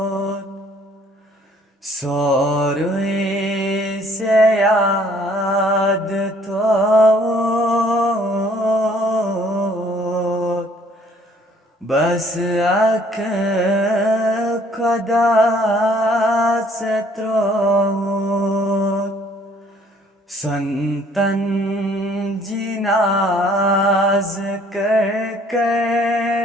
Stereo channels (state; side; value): normal; both; correlation 0.60